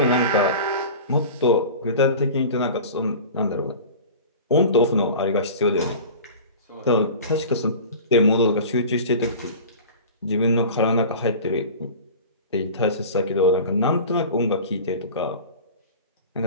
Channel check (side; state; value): both; inverted; correlation -0.37